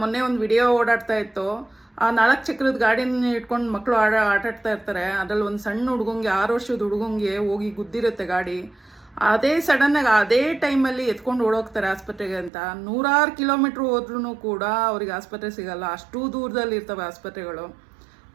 ಮೊನ್ನೆ ಒಂದು ವಿಡಿಯೋ ಓಡಾಡ್ತಾ ಇತ್ತು. ಆ 4 ಚಕ್ರದ ಗಾಡಿನ ಇಟ್ಕೊಂಡು ಮಕ್ಕಳು ಆಟಾಡ್ತಾ ಇರ್ತಾರೆ. ಅದ್ರಲ್ಲಿ ಒಂದು ಸಣ್ಣ ಹುಡುಗಂಗೆ, 6 ವರ್ಷದ ಹುಡುಗಂಗೆ ಹೋಗಿ ಗುದ್ದಿರುತ್ತೆ ಗಾಡಿ. ಅದೇ ಸಡನ್ ಆಗಿ ಅದೇ ಟೈಮಲ್ಲಿ ಎತ್ಕೊಂಡು ಓಡೋಗ್ತಾರೆ ಆಸ್ಪತ್ರೆಗೆ ಅಂತ. 100 ಕಿಲೋಮೀಟರ್ ಹೋದ್ರೂ ಕೂಡ ಅವ್ರಿಗೆ ಆಸ್ಪತ್ರೆ ಸಿಗಲ್ಲ. ಅಷ್ಟು ದೂರದಲ್ಲಿ ಇರ್ತವೆ ಆಸ್ಪತ್ರೆಗಳು.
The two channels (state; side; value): drops out; left; at 12.5 s